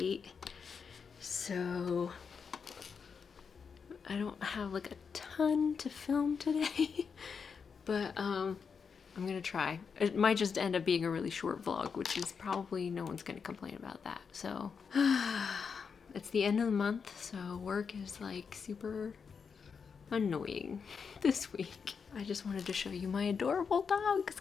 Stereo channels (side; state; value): right; quieter; 6.0 dB